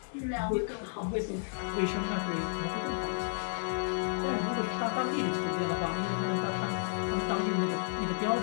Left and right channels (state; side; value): silent; right; digital silence